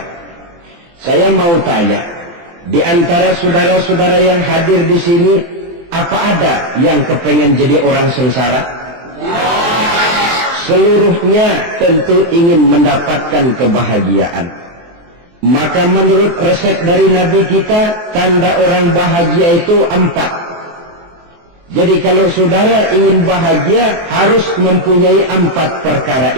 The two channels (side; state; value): left; late; 23 ms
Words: Saya mau tanya, di antara saudara-saudara yang hadir di sini, apa ada yang kepengen jadi orang sengsara? Seluruhnya tentu ingin mendapatkan kebahagiaan. Maka menurut resep dari Nabi kita, tanda orang bahagia itu 4. Jadi kalau saudara ingin bahagia, harus mempunyai 4 perkara